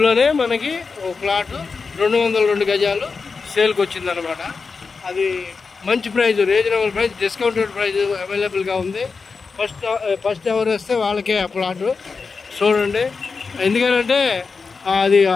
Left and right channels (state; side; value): quieter; right; 4.8 dB